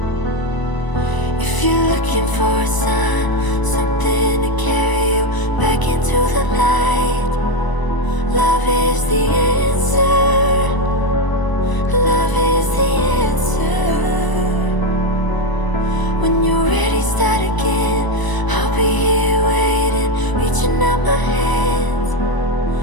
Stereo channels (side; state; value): right; late; 1.0 ms